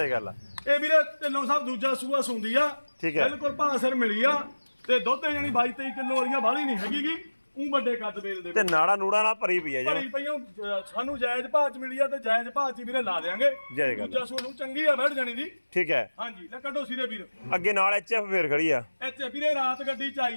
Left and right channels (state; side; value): inverted; both; correlation -1.00